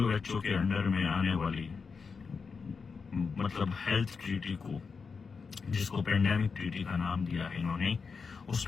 के अंडर में आने वाली मतलब हेल्थ ट्रीटी को, जिसको पेंडेमिक ट्रीटी का नाम दिया है इन्होंने, उस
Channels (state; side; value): quieter; right; 5.2 dB